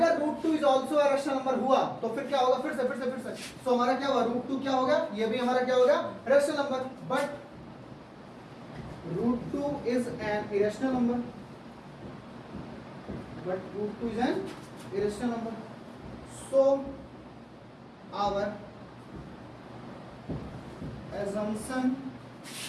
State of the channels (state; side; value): identical; both; correlation 1.00